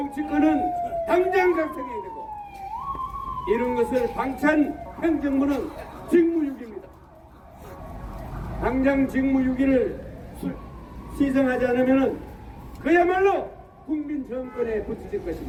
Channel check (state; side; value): identical; both; correlation 1.00